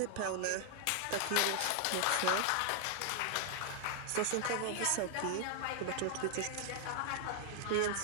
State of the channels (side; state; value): both; different; correlation 0.00